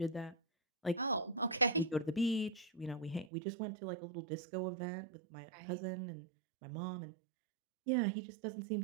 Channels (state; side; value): drops out; left; at 3.3 s